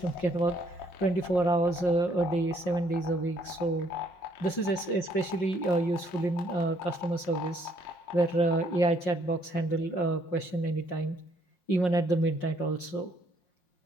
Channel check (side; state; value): right; late; 5.6 ms